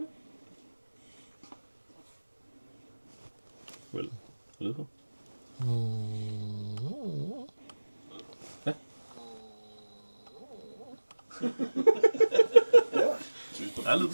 Well, a little. Ja. Der er lyd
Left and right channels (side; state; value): both; inverted; correlation -1.00